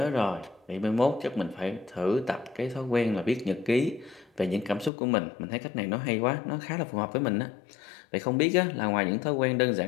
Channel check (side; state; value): right; drops out; at 4.9 s